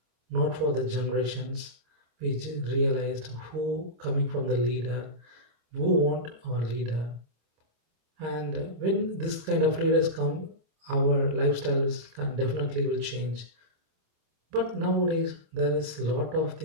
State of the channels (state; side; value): late; left; 26 ms